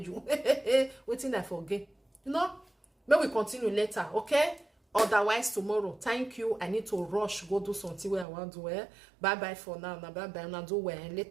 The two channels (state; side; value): drops out; left; at 8.2 s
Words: you. Waiting I forget. You know, may we continue later, okay? Otherwise tomorrow. Thank you. I need to rush go do something where I want to wear. Bye bye for now. Bye bye. And I'll do wear